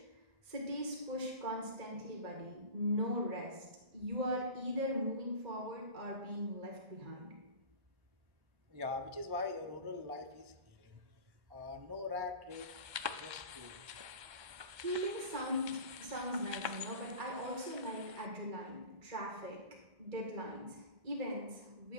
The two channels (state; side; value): late; left; 1.3 ms